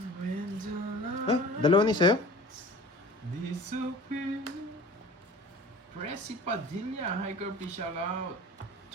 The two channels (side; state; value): both; normal; correlation 0.41